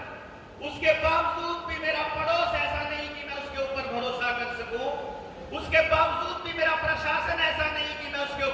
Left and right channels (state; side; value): identical; both; correlation 1.00